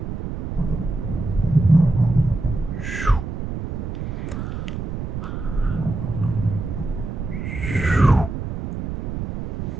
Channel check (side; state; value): right; noise; rumble, 4 dB below the sound